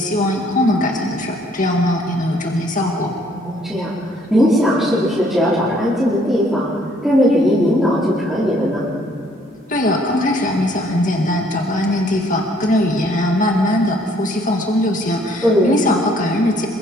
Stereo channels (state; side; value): normal; both; correlation 0.63